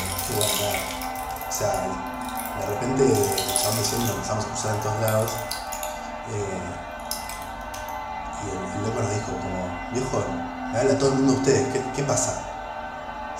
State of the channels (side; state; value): both; identical; correlation 1.00